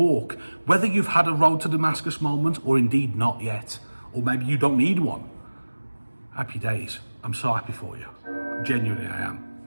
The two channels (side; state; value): both; inverted; correlation -1.00